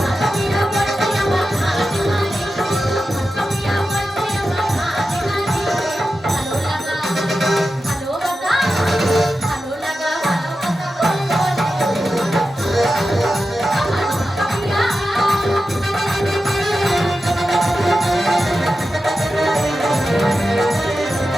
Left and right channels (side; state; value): both; normal; correlation 0.92